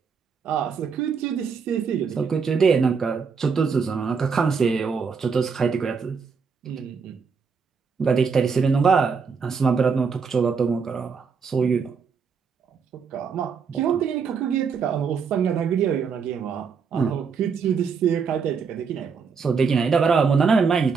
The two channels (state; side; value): quieter; left; 5.8 dB